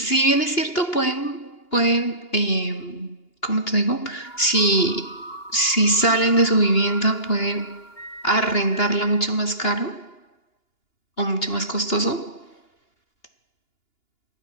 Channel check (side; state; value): right; late; 2.9 ms